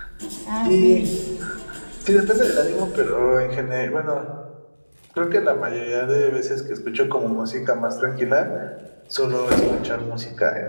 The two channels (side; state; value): both; inverted; correlation -1.00